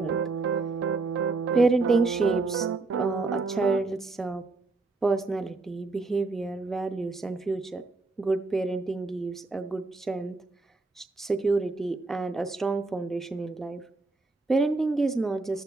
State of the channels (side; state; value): left; quieter; 3.6 dB